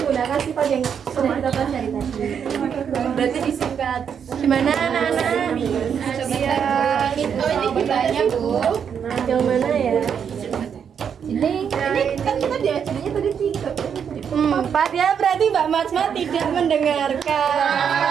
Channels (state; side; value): quieter; left; 7.6 dB